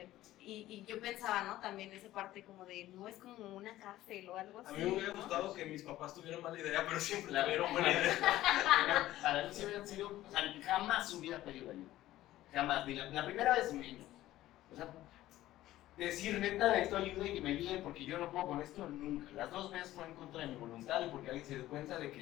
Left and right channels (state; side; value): quieter; right; 15.0 dB